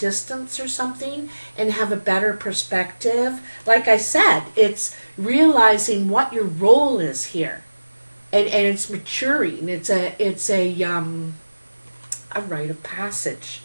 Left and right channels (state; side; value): inverted; both; correlation -1.00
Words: or something and have a better perspective. Like I said, it's realizing what your role is here, and it's maturing. It's a rite of passage,